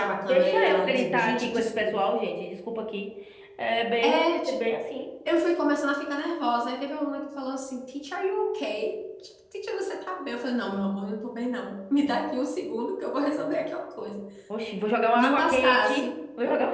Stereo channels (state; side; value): identical; both; correlation 1.00